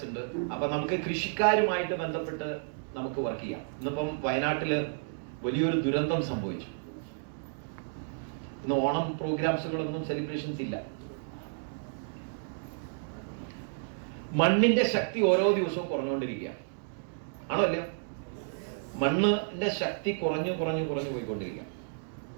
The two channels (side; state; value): left; silent; 56 dB below the other